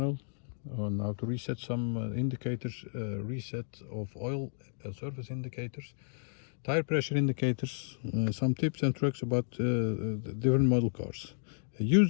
on how to reset some indicators, reset of oil service indicators, tire pressure indicators, some tips and tricks about the different model cars. Use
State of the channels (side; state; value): right; silent; digital silence